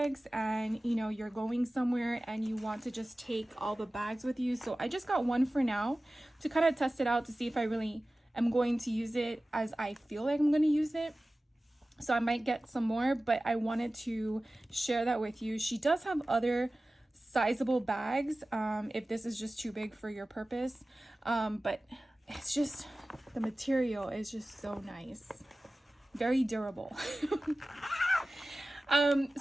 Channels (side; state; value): both; normal; correlation 0.96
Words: and you know you're going somewhere and you want to just take all the bags with you. So I just got one for now to kind of test it out to see if I really am going to use it as I feel like I'm going to use it. So I might get some more, but I wanted to share that with you. She does have other sizable bags if this is just too big for your purpose, but it's just, the material is just so nice, very durable.